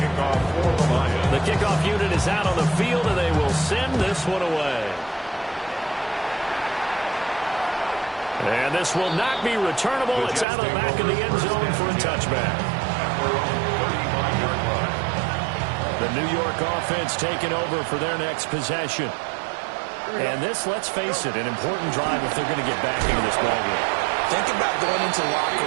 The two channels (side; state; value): left; drops out; at 10.5 s